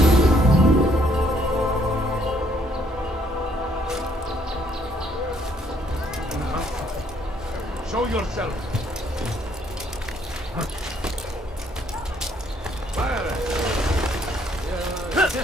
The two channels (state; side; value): normal; both; correlation 0.66